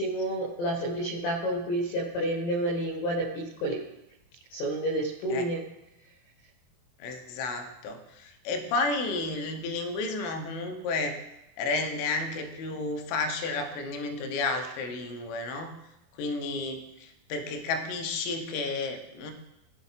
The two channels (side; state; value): right; late; 24 ms